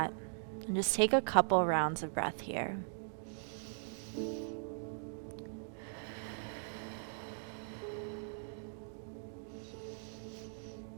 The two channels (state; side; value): silent; left; digital silence